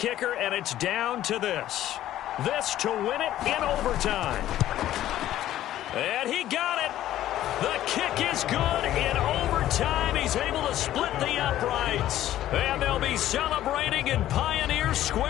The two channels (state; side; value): quieter; right; 13.1 dB